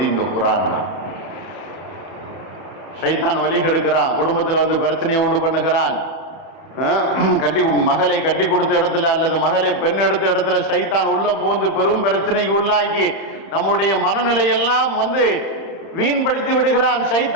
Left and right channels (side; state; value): right; late; 30 ms